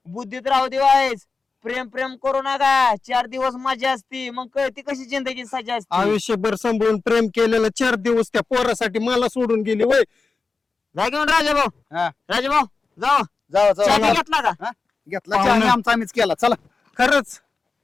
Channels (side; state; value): right; quieter; 4.3 dB